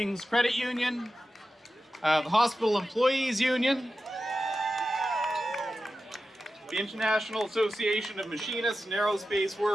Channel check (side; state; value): both; normal; correlation 0.92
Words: Credit Union, the Hospital Employees Union, the International Association of Machinists and Aerospace